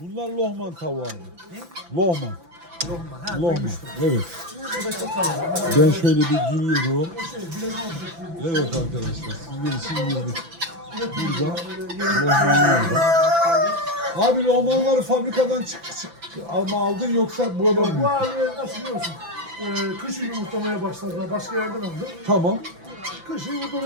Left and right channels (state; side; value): late; left; 5.9 ms